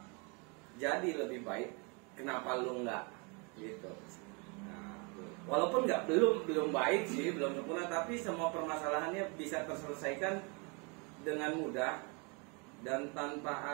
jadi lebih baik, kenapa lu enggak gitu? Nah, walaupun belum baik sih, belum sempurna, tapi semua permasalahannya bisa terselesaikan dengan mudah dan tanpa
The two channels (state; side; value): quieter; left; 31.9 dB